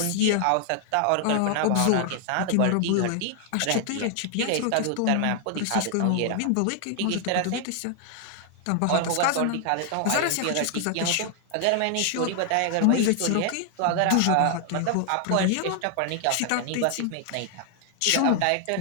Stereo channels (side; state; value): both; different; correlation 0.00